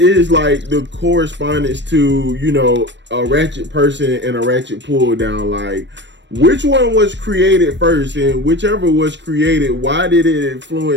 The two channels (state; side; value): late; left; 0.53 ms